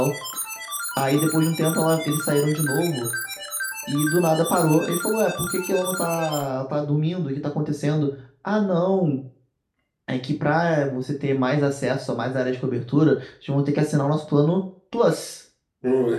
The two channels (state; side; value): identical; both; correlation 1.00